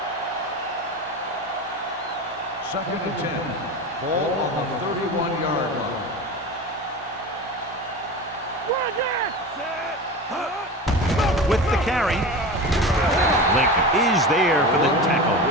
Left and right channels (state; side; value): normal; both; correlation 0.28